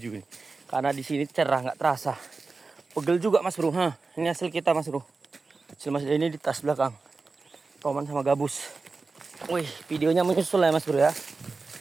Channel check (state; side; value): quieter; left; 4.0 dB